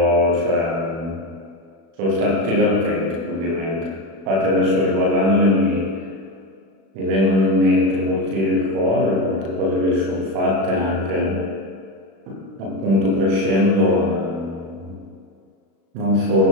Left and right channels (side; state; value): left; late; 36 ms